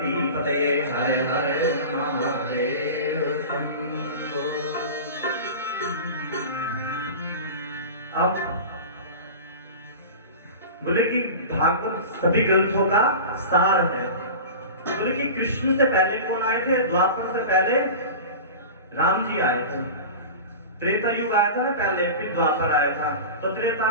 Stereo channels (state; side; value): inverted; both; correlation -0.32